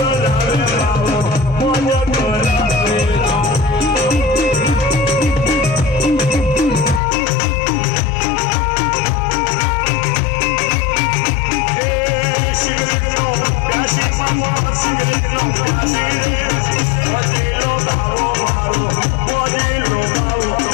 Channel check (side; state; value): right; drops out; at 7.0 s